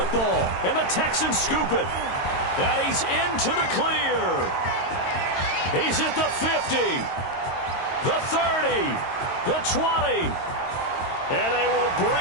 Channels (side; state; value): right; late; 22 ms